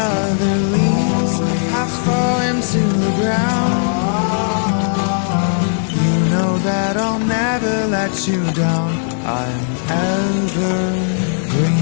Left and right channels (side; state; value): right; silent; digital silence